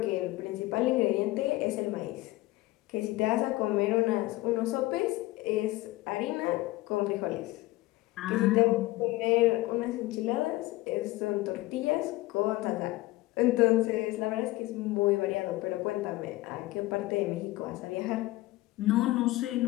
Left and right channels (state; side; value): quieter; right; 18.8 dB